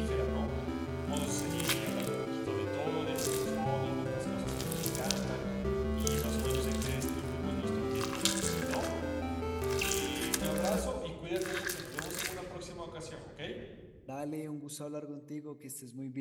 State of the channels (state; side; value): identical; both; correlation 1.00